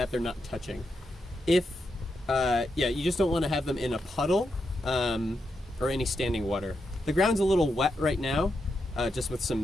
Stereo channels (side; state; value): both; normal; correlation 0.84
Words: they're not touching. You just don't want to have them in a puddle or any standing water. The ground's a little wet right now, just with